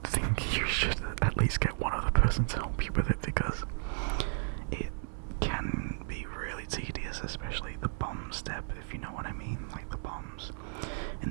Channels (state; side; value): silent; left; 55 dB below the other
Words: think you should at least get one other person to help you with it, because it can be really tedious, especially the bomb step, if you know what I mean. Like, the bombs